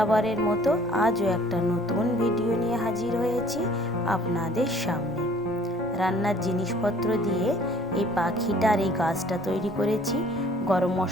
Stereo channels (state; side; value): normal; both; correlation 0.54